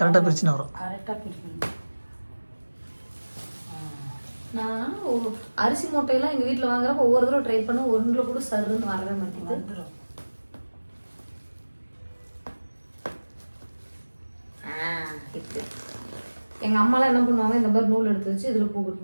பிரிச்சுன்னு வரும். நான் அரிசி மூட்டையெல்லாம் எங்கள் வீட்டில் வாங்குறப்ப ஒவ்வொரு தடவை ட்ரை பண்ண ஒன்றில் கூட சருன்னு வரவே மாட்டேங்குது. இப்போ எங்கள் அம்மாலாம் என்ன பண்ணுவாங்க, இந்த மாதிரி நூல் எடுத்து வச்சு இதில் பூ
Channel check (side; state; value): both; inverted; correlation -1.00